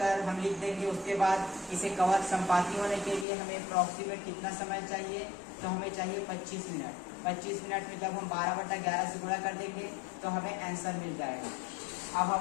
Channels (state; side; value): drops out; right; at 3.2 s